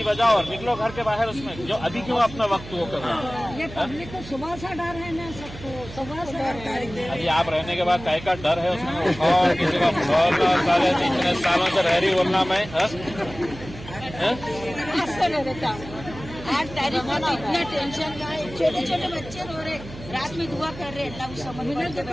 बजाओ और निकलो घर के बाहर। उसमें जो अभी क्यों अपना वक्त वो कर रहे हैं? ये पब्लिक को सुबह से डर है ना, सबको सुबह से डर। अभी आप रहने के बाद काय का डर है उसमें? और किसी का बोलना साले इतने सालों से रह रही बोलना मैं आज तारीख में तो इतना टेंशन का है, छोटे छोटे बच्चे रो रहे, रात में दुआ कर रहे, अल्लाह उस समझ में तो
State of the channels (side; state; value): right; noise; hum, 14 dB below the sound